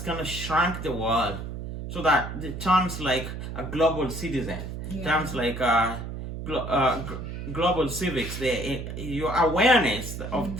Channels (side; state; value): right; noise; hum, 7 dB below the sound